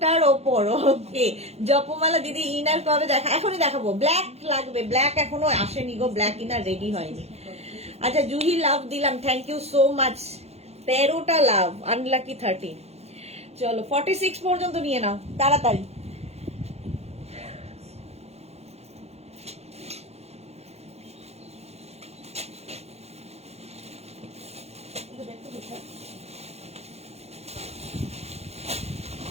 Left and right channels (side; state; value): left; late; 0.31 ms